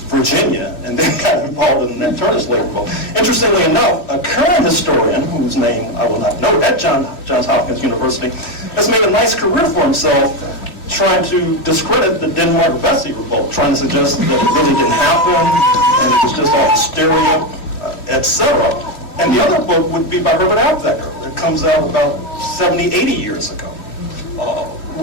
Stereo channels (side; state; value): right; late; 3.2 ms